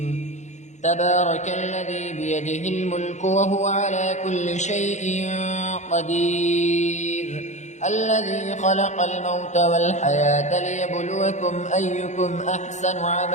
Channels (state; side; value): late; right; 0.34 ms